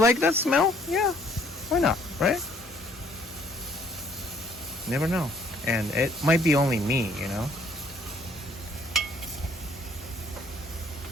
that smell, yeah, why not, right? Never know. And it might be only me, you know?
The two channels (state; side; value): normal; both; correlation 0.62